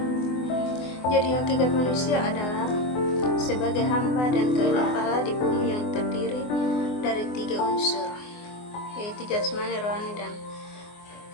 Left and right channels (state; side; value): late; right; 24 ms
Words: Jadi hakikat manusia adalah sebagai hamba dan khalifah Allah di bumi yang terdiri dari 3 unsur, yaitu jasmani, rohani, dan